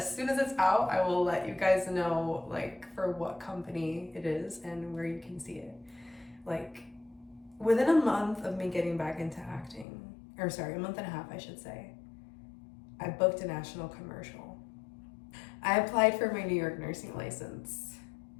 soon as it's out, I will let you guys know like for what company it is and where you can see it. Like within a month of me getting back into acting, or sorry, a month and a half, I should say, I booked a national commercial. I applied for my New York nursing license.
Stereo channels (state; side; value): drops out; right; at 9.9 s